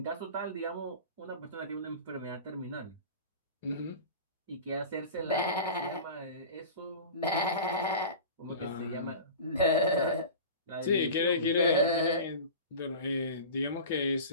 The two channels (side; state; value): both; inverted; correlation -0.34